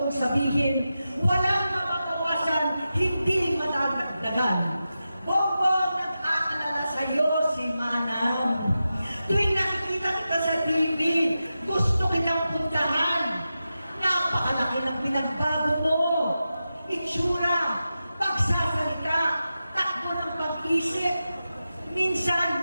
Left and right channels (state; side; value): inverted; both; correlation -0.91